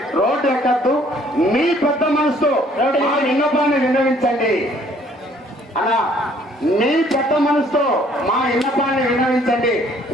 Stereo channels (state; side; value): normal; both; correlation 0.61